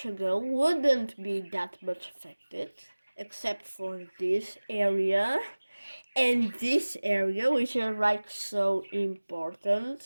wouldn't be that much affected, except for this area and this area, which are like so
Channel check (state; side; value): inverted; both; correlation -1.00